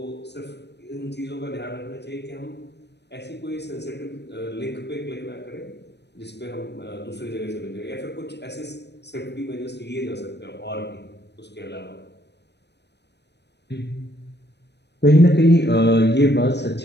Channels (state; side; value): late; right; 0.50 ms